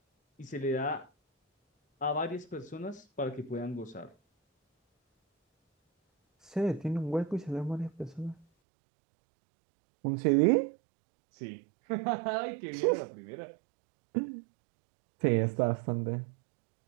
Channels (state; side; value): drops out; left; at 8.5 s